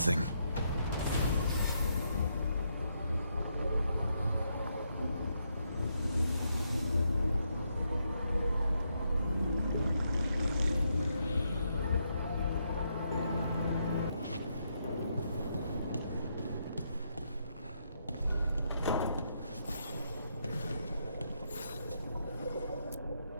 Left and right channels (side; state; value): both; inverted; correlation -0.79